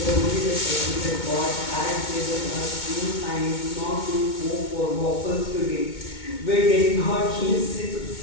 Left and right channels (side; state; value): right; late; 2.2 ms